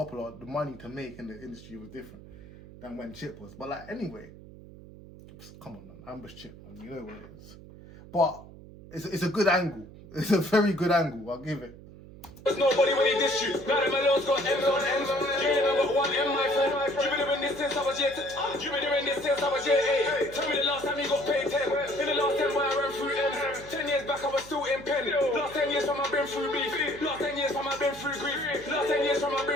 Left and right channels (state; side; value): noise; right; hum, 18 dB below the sound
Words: the money to make in the industry was different than when Chip was. But, like, anyway, come on, man. Ambush Chip, man. You know what it is. But it's a good angle. It's a very good angle. I'll give it. There's nobody when he dissed you. Now that Malone's got M's on M's. Yeah, I got one M, my friend. You've been doing this since I was year 10. You've been doing this since I was year 8. Tell me the last time you got paid 10. In the last 10 when I ran through M's. 10 years back I was still in pen. Last 10 years from I've been through beef. Last 10 years from I've been through grief. Last 10 years from I've